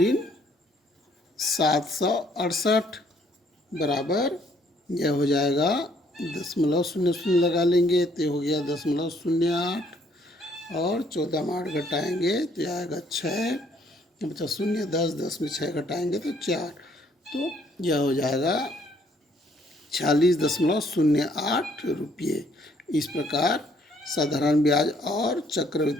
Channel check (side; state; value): both; normal; correlation 0.65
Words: 768 बराबर यह हो जाएगा 0.00 लगा लेंगे तो हो गया 0.08 और 14 में 8 घटाएंगे तो आएगा 6, बचा 0, 10 में 6 घटाएंगे तो 4, तो यह हो जाएगा 46.08 रुपये। इस प्रकार साधारण ब्याज और